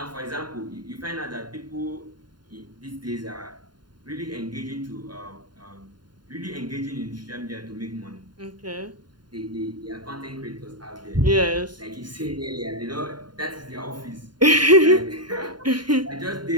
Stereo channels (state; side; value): late; left; 0.71 ms